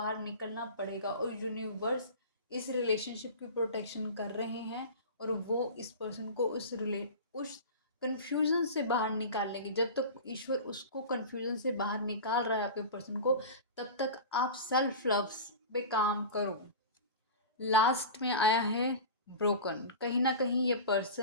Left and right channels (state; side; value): inverted; both; correlation -0.31